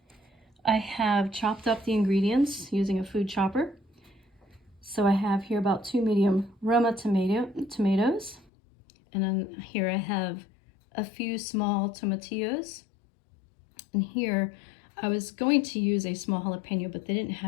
I have chopped up the ingredients using a food chopper. So I have here about 2 medium Roma tomatoes, and then here I have a few small tomatillos, and here I was going to use a small jalapeno, but they didn't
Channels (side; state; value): right; drops out; at 8.5 s